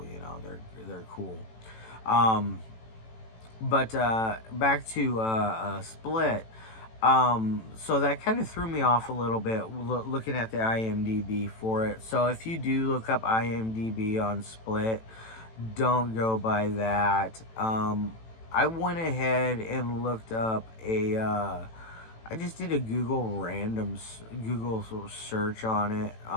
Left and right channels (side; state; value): right; late; 18 ms